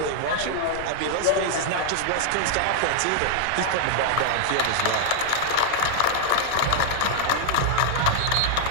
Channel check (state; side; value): different; both; correlation 0.00